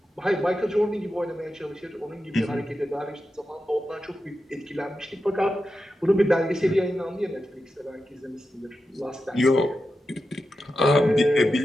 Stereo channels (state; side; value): normal; both; correlation 0.90